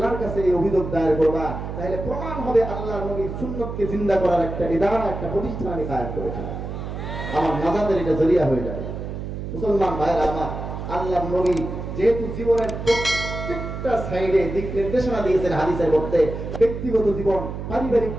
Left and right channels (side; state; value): right; noise; hum, 7 dB below the sound